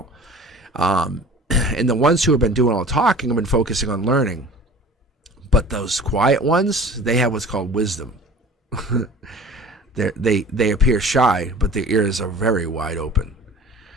And the ones who have been doing all the talking have been focusing on learning. But those quiet ones, they have what's called wisdom. They appear shy, but their ears are very wide open.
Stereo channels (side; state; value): both; normal; correlation 0.44